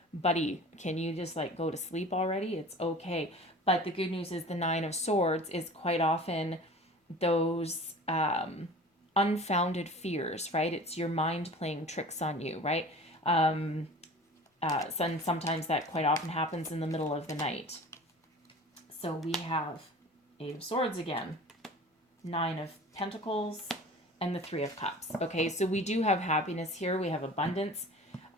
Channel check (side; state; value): both; normal; correlation 0.41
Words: buddy, can you just like go to sleep already? It's okay. But the good news is the Nine of Swords is quite often those unfounded fears, right? It's your mind playing tricks on you, right? Sometimes that quite often happens in the middle of the night. So we have Eight of Swords again, Nine of Pentacles, and the Three of Cups. Okay, so we do have happiness here. We have abundance.